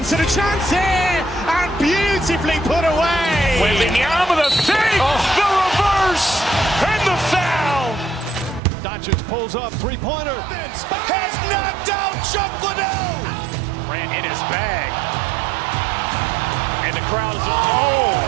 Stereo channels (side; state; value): left; drops out; at 8.6 s